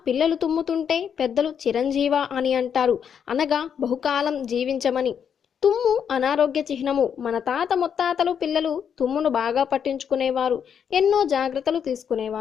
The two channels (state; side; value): quieter; right; 7.8 dB